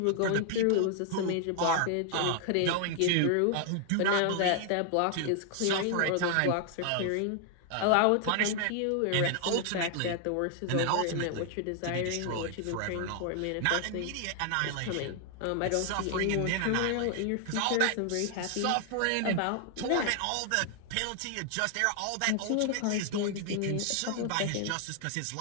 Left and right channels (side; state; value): both; different; correlation 0.00